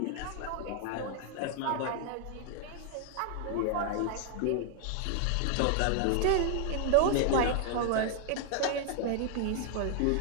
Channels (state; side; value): different; both; correlation 0.00